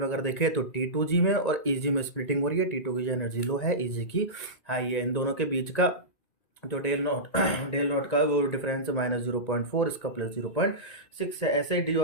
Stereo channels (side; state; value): right; late; 1.9 ms